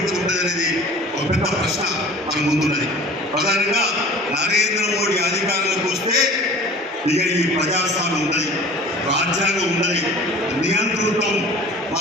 ఉంటుంది అనేది ఒక పెద్ద ప్రశ్న మన ముందున్నది. ప్రధానంగా నరేంద్ర మోడీ అధికారంలోకి వస్తే ఇక ఈ ప్రజాస్వామ్యం ఉన్నది, రాజ్యాంగం ఉన్నది, నియంతృత్వం,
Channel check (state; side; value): normal; both; correlation 0.43